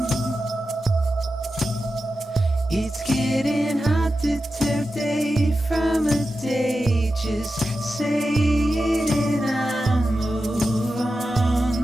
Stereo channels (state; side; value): normal; both; correlation 0.91